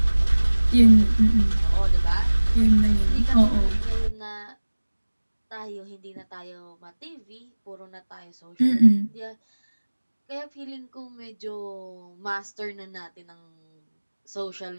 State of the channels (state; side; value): inverted; both; correlation -1.00